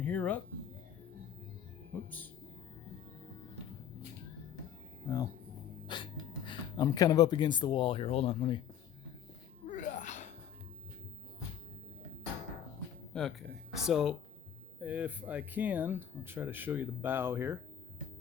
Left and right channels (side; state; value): right; quieter; 9.1 dB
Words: up, whoops. Well, I'm kind of up against the wall here. Hold on, let me. Okay, so if I can, I'll try to show you the bow here.